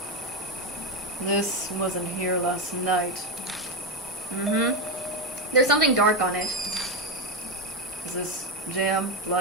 This wasn't here last night. Mm-hmm. There's something dark on it. Is this jam?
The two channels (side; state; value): both; normal; correlation 0.10